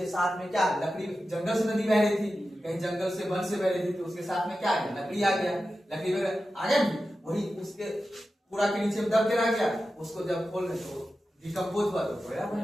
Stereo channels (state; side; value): normal; both; correlation 0.92